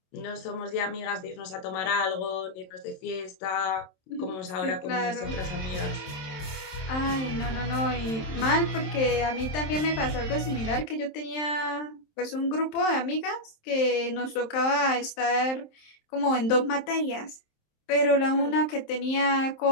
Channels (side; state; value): right; late; 27 ms